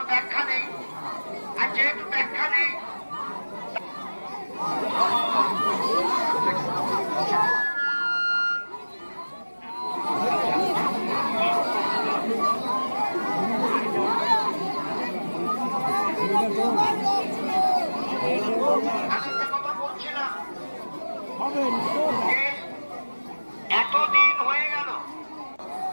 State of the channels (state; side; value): inverted; both; correlation -1.00